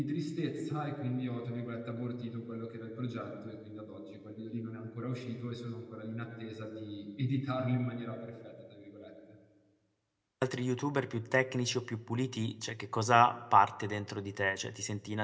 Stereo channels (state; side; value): identical; both; correlation 1.00